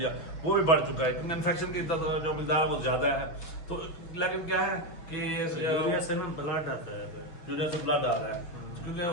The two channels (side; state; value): right; late; 6.1 ms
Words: वो भी बढ़ चुका है क्योंकि इन्फेक्शन की जो मिकदार वो ज्यादा है। तो लेकिन क्या है कि यूरिया से ना ब्लड आता है, यूरिया से ब्लड आ रहा है क्योंकि